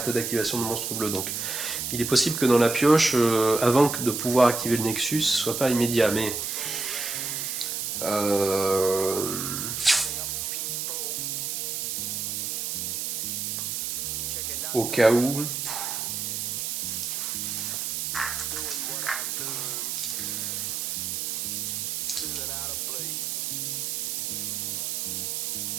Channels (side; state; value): right; noise; hiss, 2 dB below the sound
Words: d'activation de monstre bleu. Donc il est possible que dans la pioche, avant de pouvoir activer le Nexus, ce soit pas immédiat, mais au cas où.